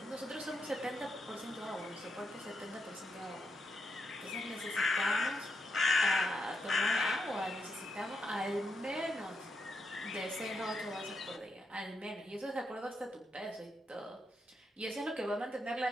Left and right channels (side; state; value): both; normal; correlation 0.83